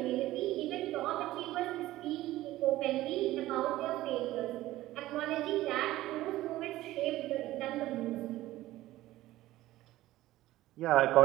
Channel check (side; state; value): left; quieter; 16.0 dB